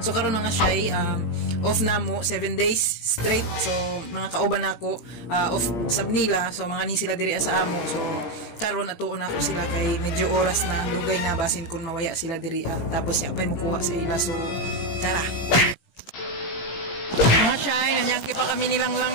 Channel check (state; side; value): late; right; 17 ms